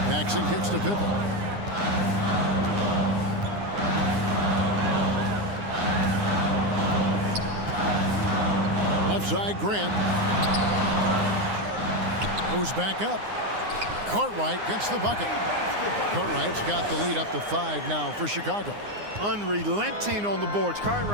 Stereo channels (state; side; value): late; left; 9.7 ms